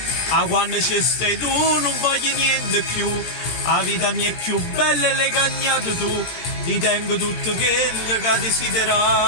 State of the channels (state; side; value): late; right; 17 ms